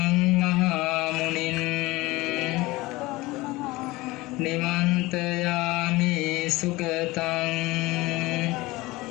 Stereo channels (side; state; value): right; quieter; 20.8 dB